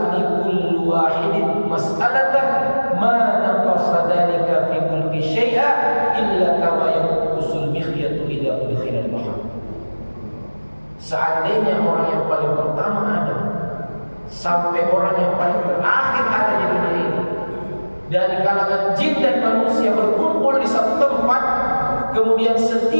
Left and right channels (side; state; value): both; inverted; correlation -1.00